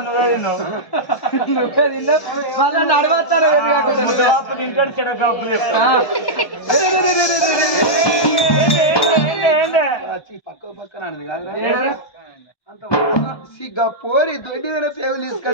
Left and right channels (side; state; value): right; late; 1.2 ms